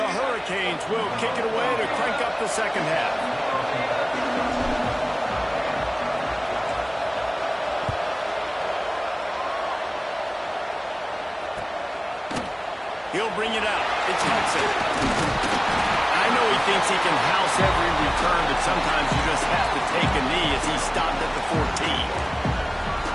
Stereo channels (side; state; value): both; identical; correlation 1.00